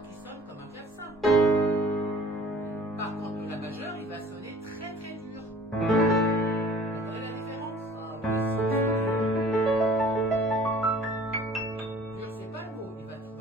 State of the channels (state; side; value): normal; both; correlation 0.49